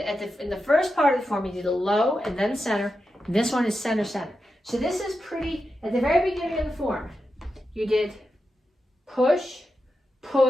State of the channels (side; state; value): both; normal; correlation 0.89